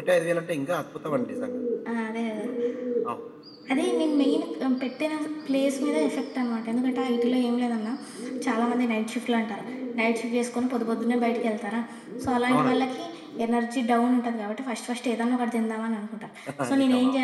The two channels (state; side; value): identical; both; correlation 1.00